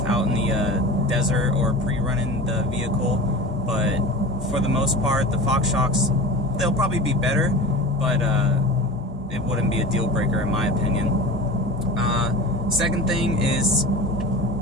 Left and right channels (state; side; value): normal; both; correlation 0.34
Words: out in the desert or pre-running the vehicle. But for the most part, the Fox shocks, they'll probably be better, but it wouldn't be a deal breaker in my opinion. Second thing is